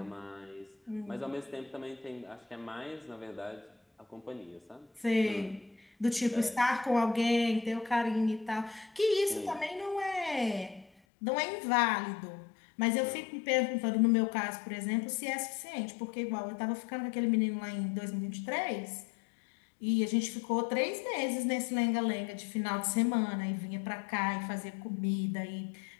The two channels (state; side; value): drops out; right; at 10.9 s